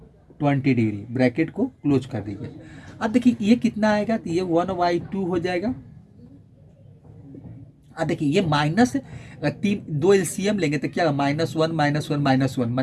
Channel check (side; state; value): both; identical; correlation 1.00